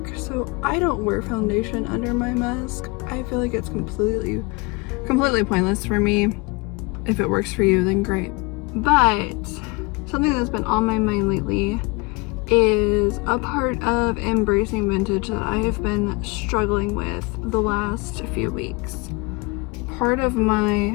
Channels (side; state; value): right; quieter; 27.0 dB